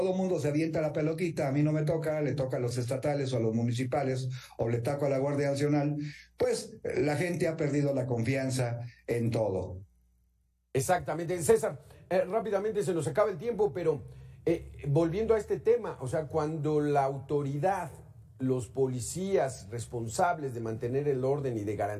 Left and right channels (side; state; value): both; identical; correlation 1.00